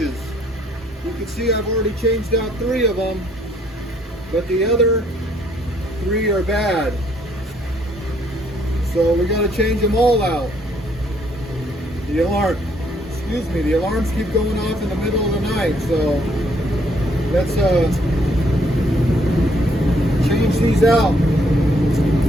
You can see I've already changed out 3 of them, but the other 3 are bad. So we got to change them all out. The alarms keep going off in the middle of the night, so let's change these out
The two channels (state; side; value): normal; both; correlation 0.67